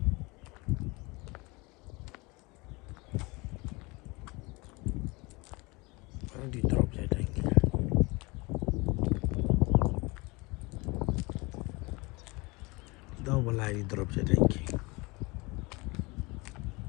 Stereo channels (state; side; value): quieter; right; 25.5 dB